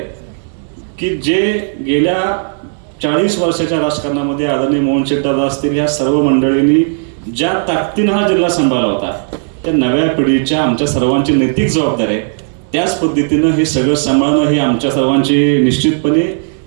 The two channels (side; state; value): left; silent; digital silence